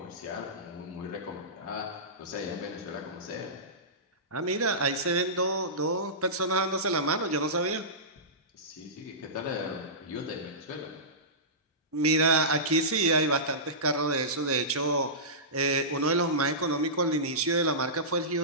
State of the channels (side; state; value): both; normal; correlation -0.19